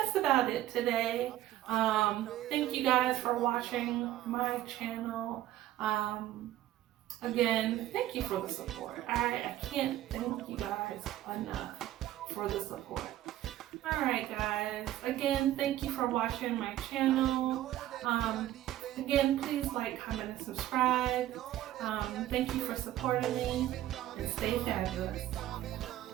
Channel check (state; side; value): quieter; left; 13.8 dB